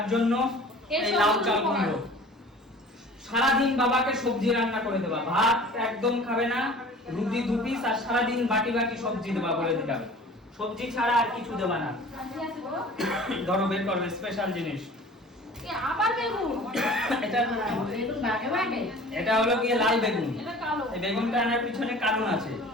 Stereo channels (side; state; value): both; normal; correlation 0.44